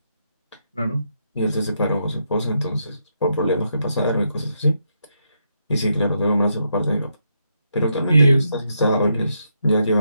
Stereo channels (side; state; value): both; inverted; correlation -0.79